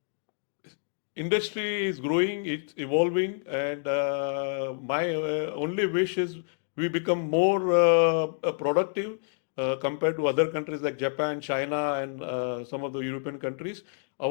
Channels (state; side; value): silent; right; digital silence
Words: Industry is growing, it's evolving, and my only wish is we become more productive compared to other countries like Japan, China, and some of the European countries.